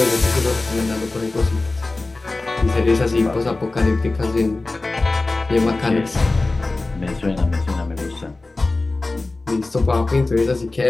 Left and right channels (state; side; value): quieter; right; 3.2 dB